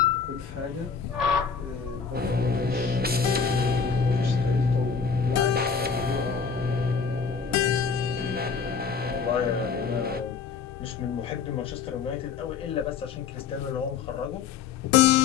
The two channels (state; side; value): quieter; right; 6.0 dB